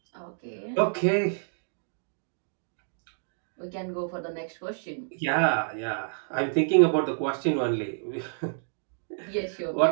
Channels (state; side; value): silent; left; digital silence